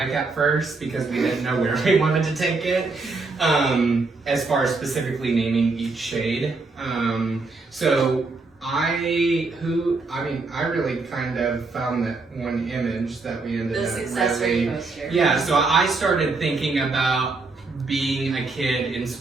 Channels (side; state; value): left; quieter; 3.8 dB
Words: at first because we didn't know where we wanted to take it, as far as specifically naming each shade. So I really kind of found that one image that we ended The up success really, rate poster. yeah, so I started thinking about being a kid in